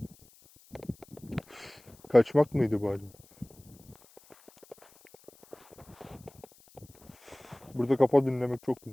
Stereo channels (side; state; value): left; noise; hiss, 27 dB below the sound